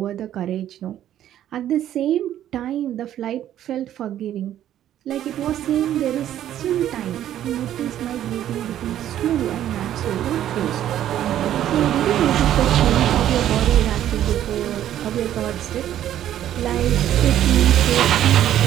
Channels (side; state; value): left; quieter; 11.6 dB